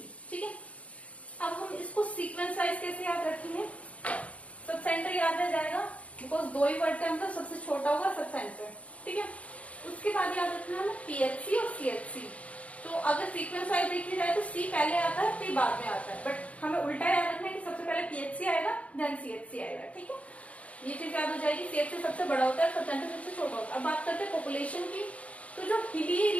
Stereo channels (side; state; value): right; late; 0.065 ms